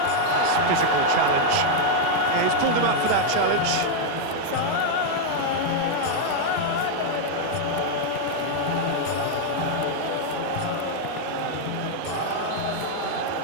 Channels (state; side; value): different; both; correlation 0.00